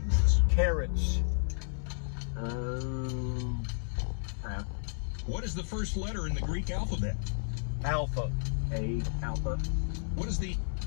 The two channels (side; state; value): right; silent; 56 dB below the other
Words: Carrots. Pass. What is the first letter in the Greek alphabet? Alpha. A, alpha. What does the